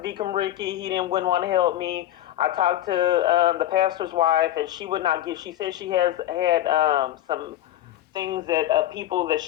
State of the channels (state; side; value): quieter; right; 13.2 dB